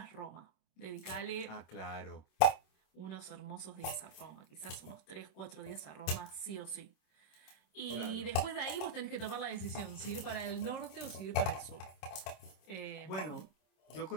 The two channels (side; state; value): right; late; 26 ms